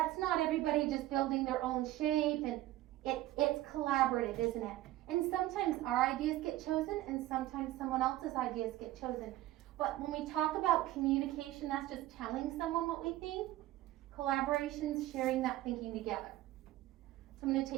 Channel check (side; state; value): left; quieter; 15.7 dB